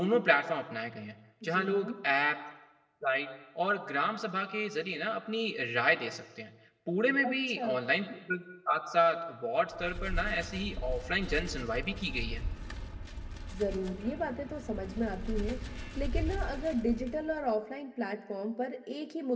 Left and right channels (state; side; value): identical; both; correlation 1.00